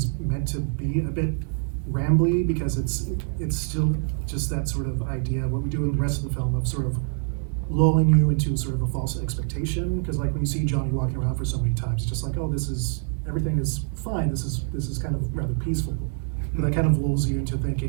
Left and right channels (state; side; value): silent; left; 57 dB below the other